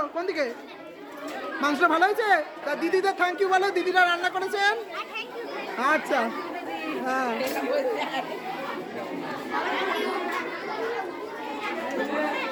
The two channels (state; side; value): identical; both; correlation 1.00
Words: কোন দিকে? মাংসটা ভালো হয়েছে? তা দিদিদের থ্যাংক ইউ বলো, দিদিরা রান্না করেছেন। আচ্ছা, হ্যাঁ।